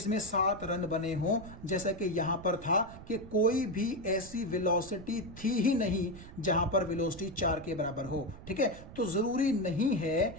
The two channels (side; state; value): right; noise; rumble, 16 dB below the sound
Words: 7 रन बने हों, जैसा कि यहां पर था कि कोई भी ऐसी वेलोसिटी थी ही नहीं जहां पर वेलोसिटी 4 के बराबर हो। ठीक है, तो जरूरी नहीं है